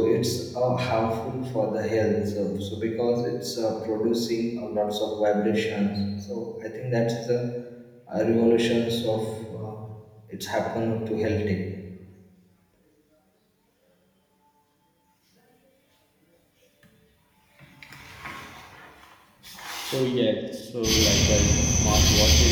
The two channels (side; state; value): both; identical; correlation 1.00